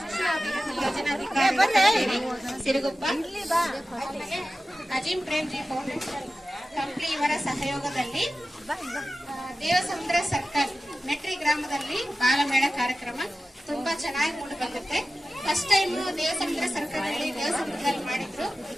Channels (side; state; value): both; normal; correlation 0.95